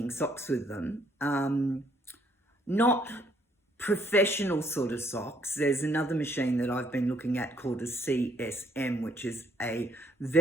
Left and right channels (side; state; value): both; normal; correlation 0.67